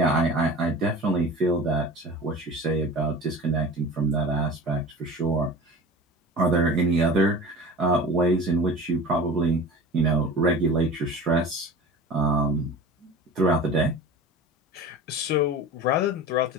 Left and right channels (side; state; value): both; normal; correlation 0.36